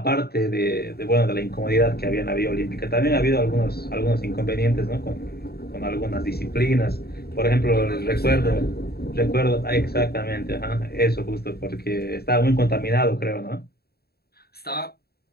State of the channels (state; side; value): late; right; 0.46 ms